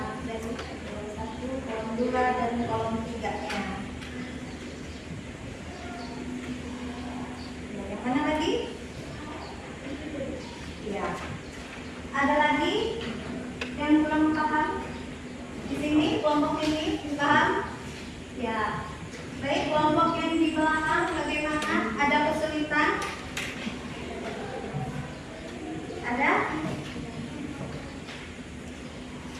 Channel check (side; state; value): both; identical; correlation 1.00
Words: dari kolom 1, kolom 2 dan kolom 3-nya. Yang mana lagi? Ya. Ada lagi yang kurang paham? Di sini kelompok ini paham? Ya. Baik, kelompok yang di belakang bagaimana? Ada kesulitan? Ada?